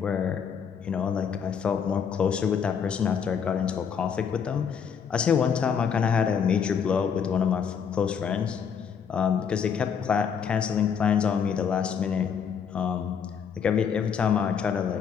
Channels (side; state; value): right; quieter; 7.1 dB